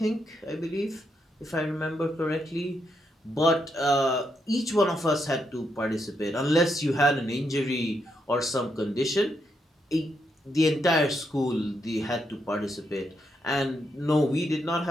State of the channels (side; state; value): both; normal; correlation 0.80